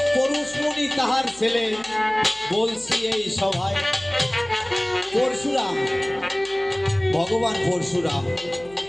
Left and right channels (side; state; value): right; noise; hum, 24 dB below the sound